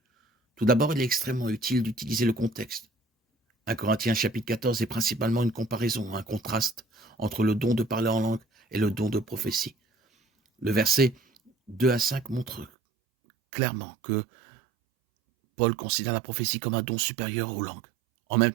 Tout d'abord, il est extrêmement utile d'utiliser le contexte. 1 Corinthiens chapitre 14 est principalement une comparaison, un contraste entre le don de parler en langue et le don de prophétie. Le verset 2 à 5 montre clairement que Paul considère la prophétie comme un don supérieur aux langues. En même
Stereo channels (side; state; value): left; drops out; at 12.7 s